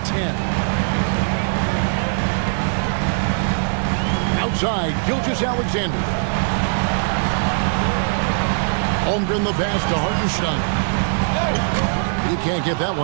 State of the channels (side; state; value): left; silent; 55 dB below the other